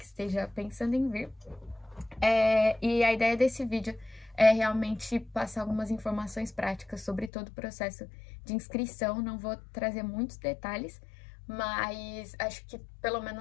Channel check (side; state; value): right; drops out; at 7.3 s